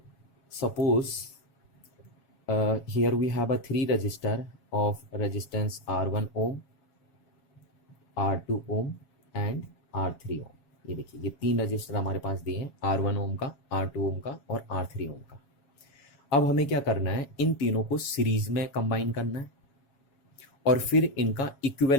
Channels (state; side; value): late; right; 7.3 ms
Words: suppose here we have a 3 resistor of resistance R1 ohm, R2 ohm and R3 ohm. ये देखिए, ये 3 register हमारे पास दिए हैं, R1 ओम का, R2 ओम का और R3 ओम का. अब हमें क्या करना है, इन तीनों को सीरीज में कंबाइन करना है और फिर इनका